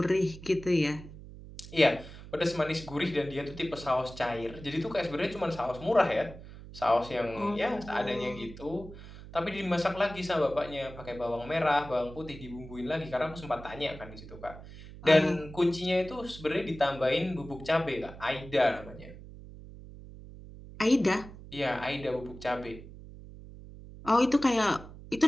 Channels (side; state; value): right; noise; hum, 15 dB below the sound